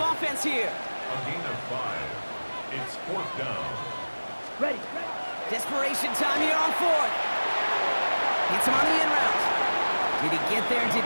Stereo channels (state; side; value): inverted; both; correlation -1.00